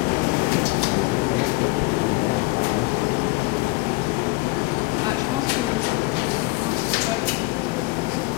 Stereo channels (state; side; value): quieter; right; 24.0 dB